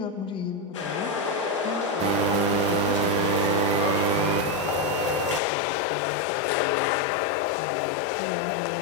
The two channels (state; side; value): drops out; right; at 5.4 s